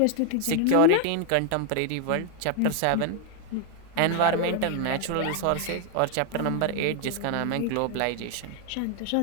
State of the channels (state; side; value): different; both; correlation 0.00